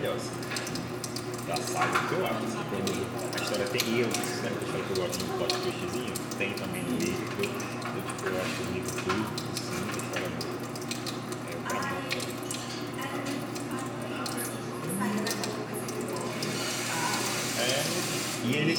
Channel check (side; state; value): both; identical; correlation 1.00